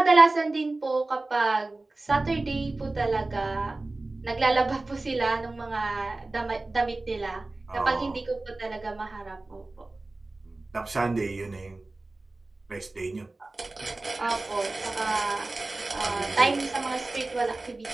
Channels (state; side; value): quieter; left; 3.1 dB